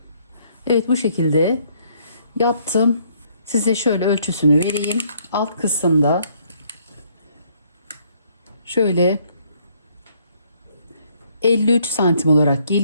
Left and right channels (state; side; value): inverted; both; correlation -0.67